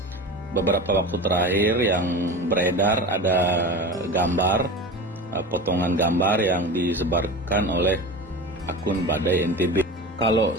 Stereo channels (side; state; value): both; normal; correlation 0.31